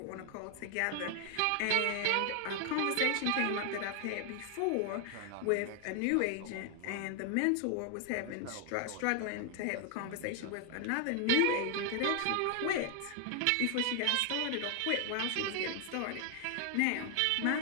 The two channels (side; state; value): both; different; correlation 0.00